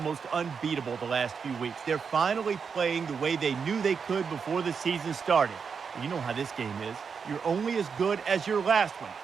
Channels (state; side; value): quieter; left; 6.0 dB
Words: unbeatable the last few weeks. They're finally playing the way they knew they could before the season started. You know how this game is. You're only as good as your last one,